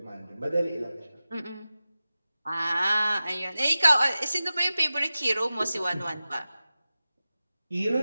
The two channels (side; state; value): both; inverted; correlation -0.95